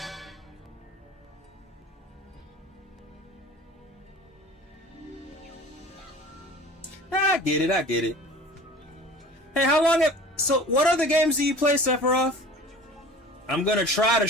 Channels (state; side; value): normal; both; correlation 0.42